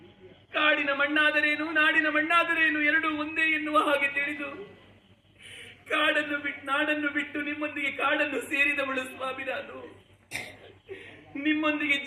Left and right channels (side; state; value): both; identical; correlation 1.00